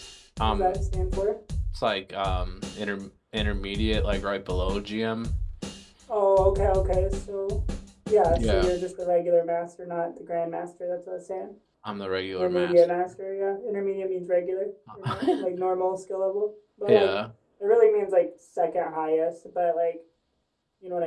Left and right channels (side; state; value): both; identical; correlation 1.00